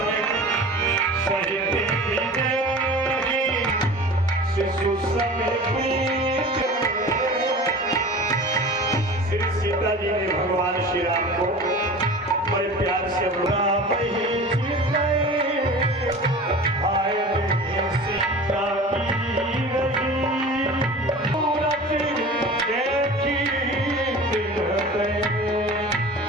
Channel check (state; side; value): normal; both; correlation 0.38